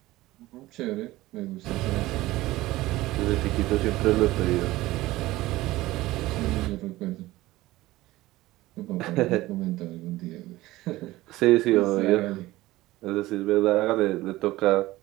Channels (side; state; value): left; quieter; 17.8 dB